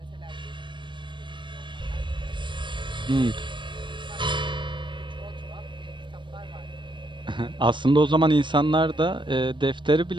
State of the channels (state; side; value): late; left; 0.23 ms